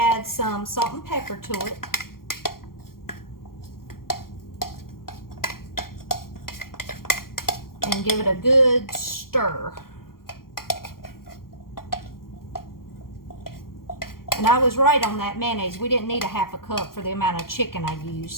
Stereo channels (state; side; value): late; right; 0.92 ms